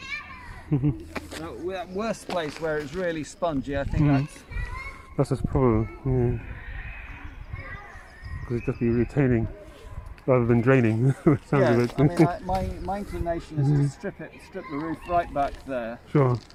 That worst place where it's really spongy, I think that's the problem. Because it just be retaining rather than draining. Sounds I mean, my inclination is to strip the roof right back there. Sure,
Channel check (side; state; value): both; identical; correlation 1.00